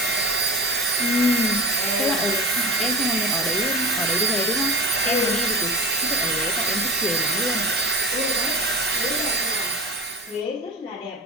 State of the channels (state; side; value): normal; both; correlation 0.34